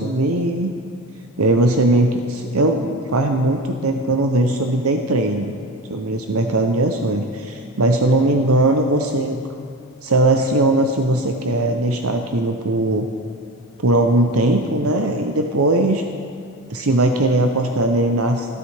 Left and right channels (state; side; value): normal; both; correlation 0.28